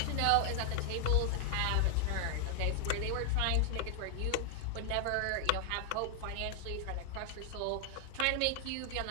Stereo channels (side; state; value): both; different; correlation 0.00